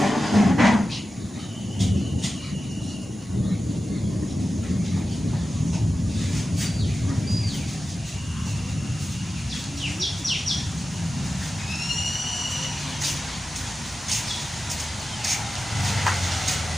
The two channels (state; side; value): normal; both; correlation 0.93